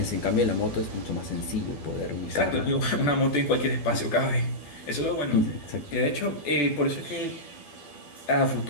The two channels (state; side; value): late; right; 12 ms